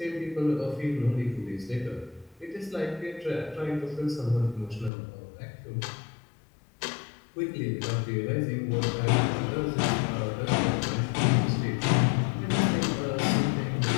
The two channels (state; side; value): drops out; right; at 4.9 s